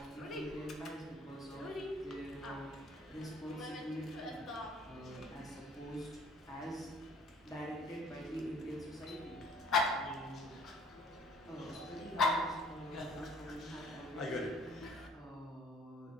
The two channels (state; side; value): normal; both; correlation 0.56